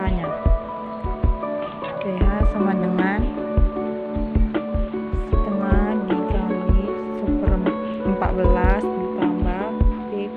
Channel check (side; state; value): both; identical; correlation 1.00